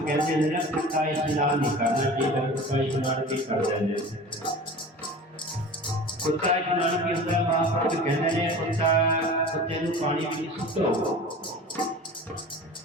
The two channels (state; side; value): normal; both; correlation 0.38